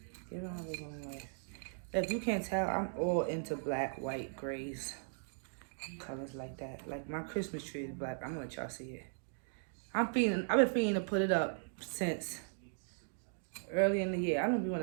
Giving my living room life. If you can't tell, I'm all into black, white, grays, colors like that. Like my Christmas tree is black. I'm gonna let y'all see it. I've been feeling to put it up since early in the year. I don't be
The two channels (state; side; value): silent; left; digital silence